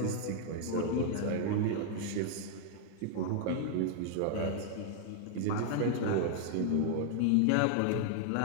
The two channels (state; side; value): different; both; correlation 0.00